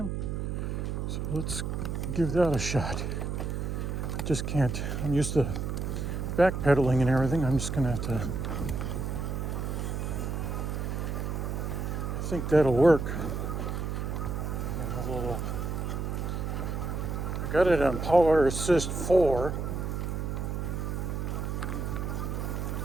So let's give that a shot. I just can't, I'm used to backpedaling and everything. I'm just going to have to, I think that'll work. I got it on Power Assist 4.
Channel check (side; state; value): right; noise; hum, 2 dB below the sound